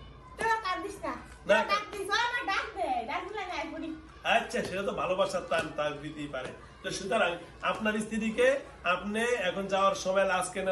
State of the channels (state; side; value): identical; both; correlation 1.00